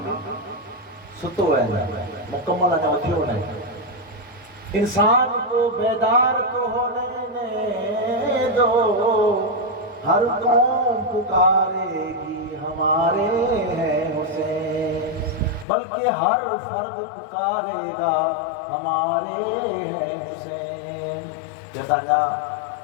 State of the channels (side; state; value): right; drops out; at 15.7 s